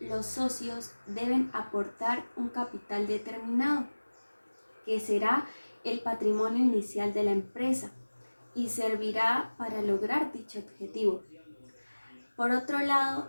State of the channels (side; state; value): both; inverted; correlation -1.00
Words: los socios deben aportar un capital determinado, que será el patrimonio inicial de la empresa y servirá para lograr dicho objetivo. Por otro